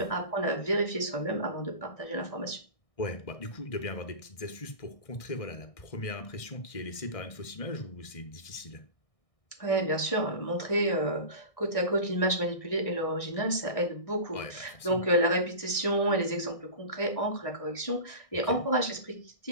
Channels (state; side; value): late; right; 1.6 ms